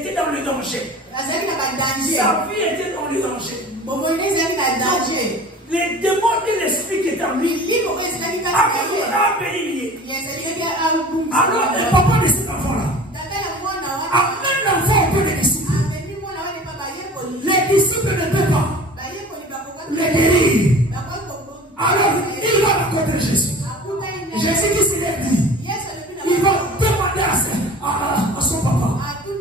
dans le danger. Sa vie était dans le danger. Les démons et l'esprit qui est en lui a béni. Alors le papa de cet enfant-là amène l'enfant auprès des disciples. Les disciples ne peuvent pas le guérir. Alors il va rencontrer Jésus. Jésus qui se lève dit, il va demander à son papa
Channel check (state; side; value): normal; both; correlation 0.41